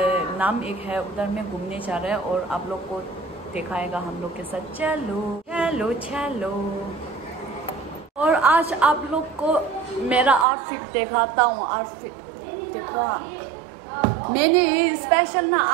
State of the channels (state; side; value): drops out; left; at 10.5 s